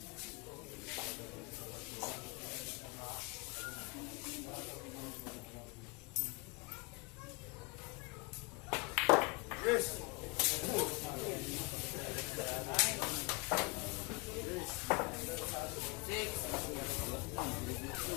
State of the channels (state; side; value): quieter; right; 28.2 dB